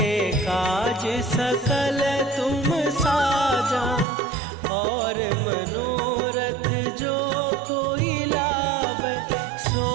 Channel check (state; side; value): drops out; left; at 4.0 s